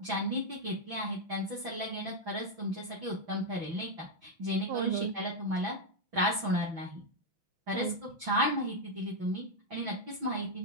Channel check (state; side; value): late; left; 6.2 ms